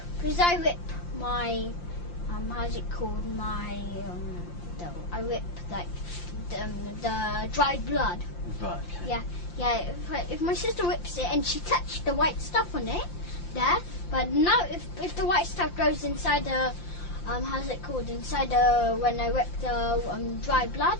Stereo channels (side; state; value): right; late; 5.8 ms